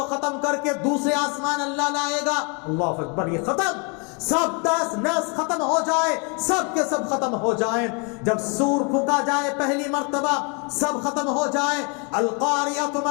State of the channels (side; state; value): right; quieter; 35.1 dB